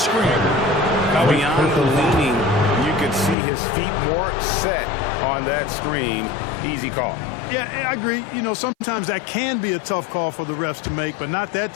Beyond the leaning, you could see his feet more set on that screen. Easy call. Yeah, I agree. You know, sometimes that can be a tough call for the refs to make, but not that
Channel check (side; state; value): right; drops out; at 3.4 s